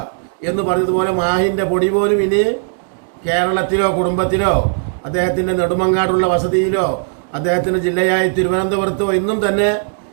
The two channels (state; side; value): silent; left; digital silence